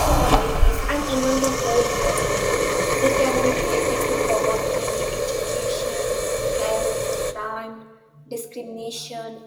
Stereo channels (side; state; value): both; identical; correlation 1.00